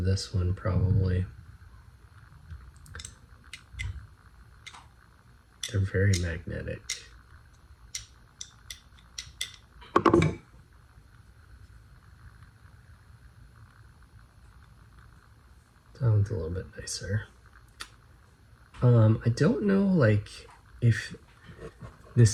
one probably. They're very magnetic. That one's a little bit nicer. I don't know like if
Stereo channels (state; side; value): identical; both; correlation 1.00